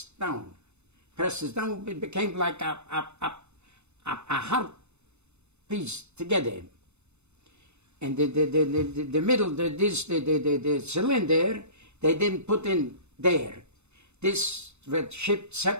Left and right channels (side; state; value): left; late; 0.81 ms